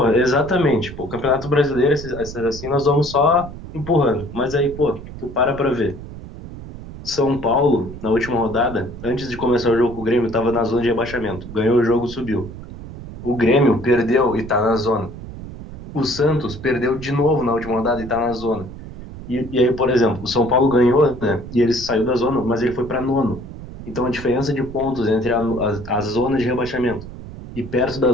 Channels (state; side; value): noise; right; rumble, 13 dB below the sound